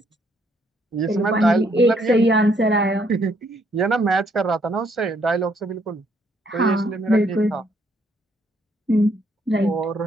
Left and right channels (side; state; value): both; normal; correlation 0.69